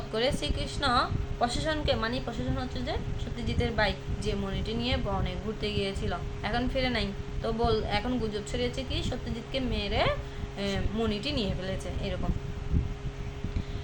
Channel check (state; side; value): identical; both; correlation 1.00